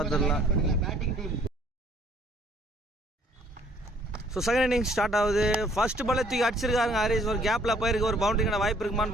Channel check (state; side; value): normal; both; correlation 0.61